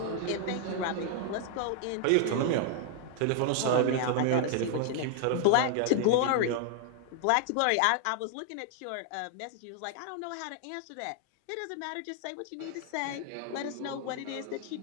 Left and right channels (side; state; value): both; different; correlation 0.00